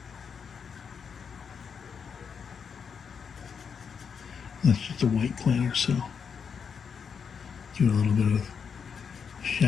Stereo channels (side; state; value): right; quieter; 6.5 dB